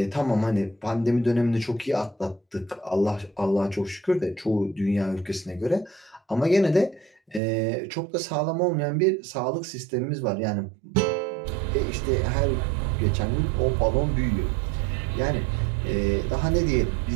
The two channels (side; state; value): left; drops out; at 7.4 s